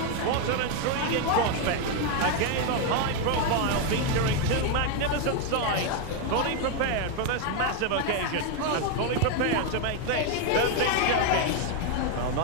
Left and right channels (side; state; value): both; different; correlation 0.01